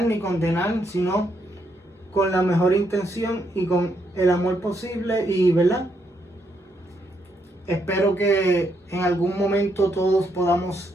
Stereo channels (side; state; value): both; normal; correlation 0.77